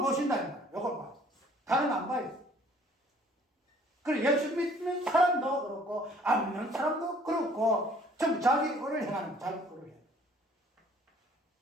보신다. 이걸 봐. 다른 안 봐요. 그래 예수 믿는 사람도 그렇고 안 믿는 사람도 그렇고 전부 자기 의를 행하는 자기 의를 해.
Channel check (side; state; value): both; normal; correlation 0.57